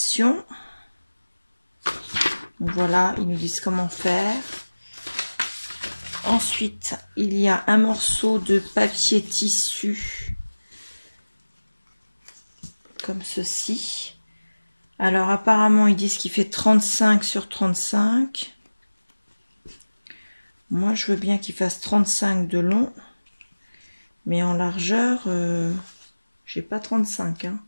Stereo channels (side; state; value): both; inverted; correlation -1.00